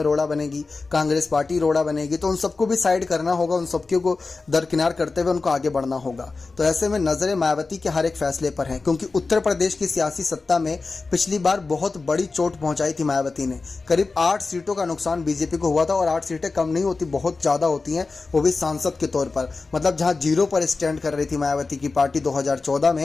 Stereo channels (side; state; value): right; quieter; 4.0 dB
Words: रोड़ा बनेगी, कांग्रेस पार्टी रोड़ा बनेगी, तो उन सबको भी साइड करना होगा, उन सबको को दरकिनार करते हुए उनको आगे बढ़ना होगा। तो ऐसे में नजरें मायावती के हर एक फैसले पर हैं, क्योंकि उत्तर प्रदेश की सियासी सत्ता में पिछली बार बहुत बड़ी चोट पहुंचाई थी मायावती ने। करीब 8 सीटों का नुकसान बीजेपी को हुआ था, और 8 सीटें कम नहीं होती, बहुत ज्यादा होती हैं, वो भी सांसद के तौर पर। मतलब जहां जीरो पर स्टैंड कर रही थी मायावती की पार्टी 2014